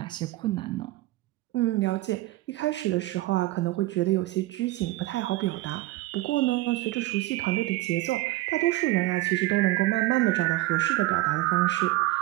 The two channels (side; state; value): left; quieter; 18.1 dB